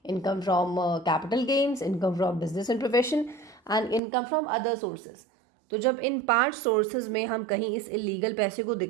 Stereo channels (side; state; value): left; drops out; at 4.0 s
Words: income from capital gains, income from business and profession and income from other sources. तो जब इन 5 सोर्सेज में हम कहीं इस इलीगल पैसे को